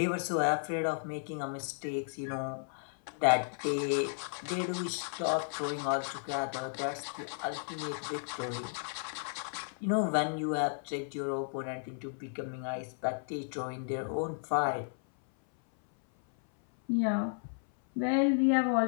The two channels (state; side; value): silent; right; 55 dB below the other